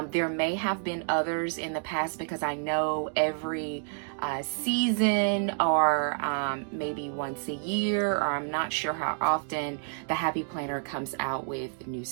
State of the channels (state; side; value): silent; left; digital silence